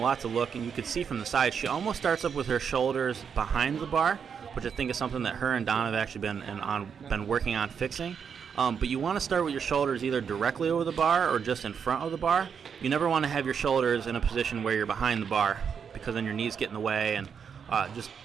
have to look, and you can see from the side, she almost starts up with her shoulders behind the bar, which I think is something that her and Don have actually been working on fixing. But you want to start with your shoulders either directly over the bar or just in front of the bar. You never want to have your shoulders in a position where you're behind the bar, because then your knees get in the way and just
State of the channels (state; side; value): quieter; left; 6.9 dB